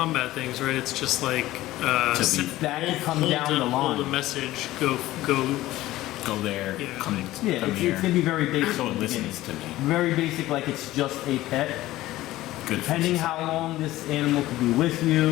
things, right? It's just like To be- sit- that can come hold down the hold a line. message. Go. Go there. Yeah. Come Yeah, come it's here. gonna be very basic. So at it the beginning. listens to me. Very basic, like it's just a pet. Good. for Depending society. how long this animal could be with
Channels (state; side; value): quieter; right; 16.3 dB